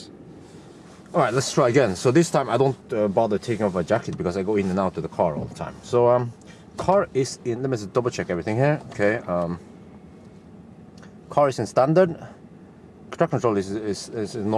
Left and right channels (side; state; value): both; identical; correlation 1.00